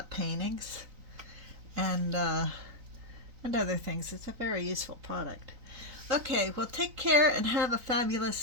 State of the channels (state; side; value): late; left; 3.9 ms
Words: paintings and other things. It's a very useful product. Okay, well, take care and have a